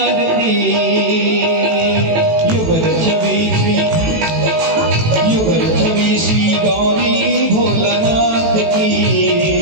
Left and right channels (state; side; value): late; left; 18 ms